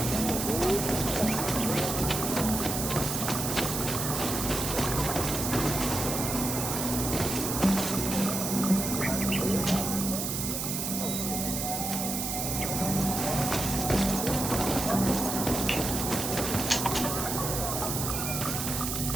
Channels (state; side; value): noise; right; hiss, 2 dB below the sound